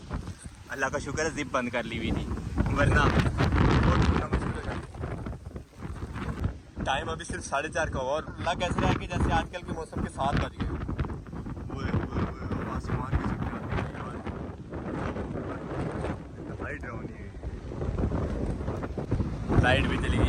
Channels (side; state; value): both; identical; correlation 1.00